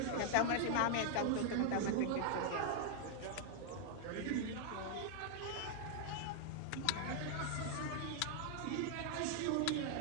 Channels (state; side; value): different; both; correlation 0.00